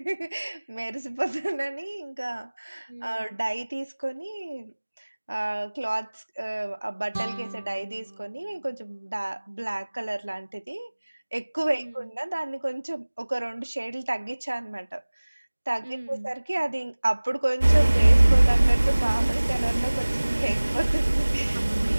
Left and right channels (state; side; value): inverted; both; correlation -1.00